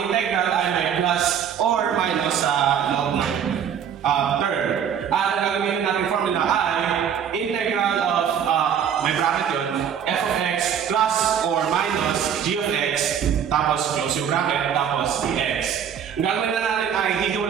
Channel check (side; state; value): left; quieter; 8.3 dB